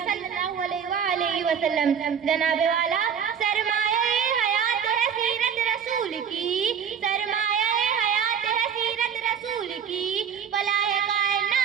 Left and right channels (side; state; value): left; quieter; 7.5 dB